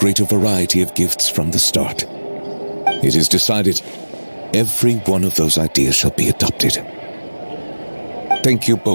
variety of gifts from the start. It is decided. Every one of those ideas shall be adopted. Thank you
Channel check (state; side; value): inverted; both; correlation -1.00